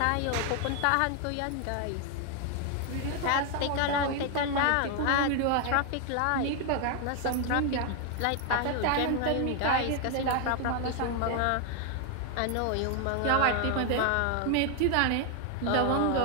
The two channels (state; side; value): different; both; correlation 0.00